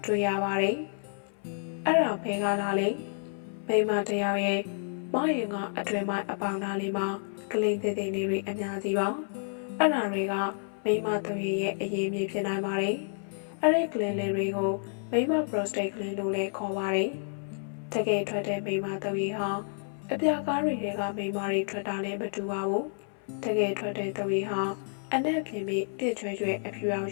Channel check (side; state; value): right; silent; 58 dB below the other